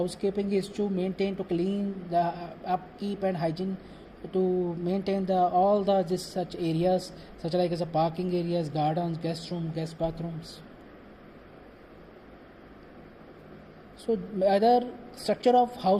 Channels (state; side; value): identical; both; correlation 1.00